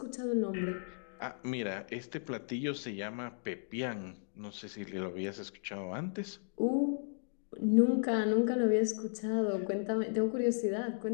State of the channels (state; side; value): silent; right; digital silence